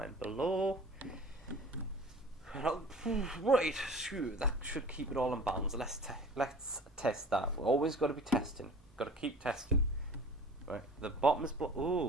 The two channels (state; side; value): normal; both; correlation 0.44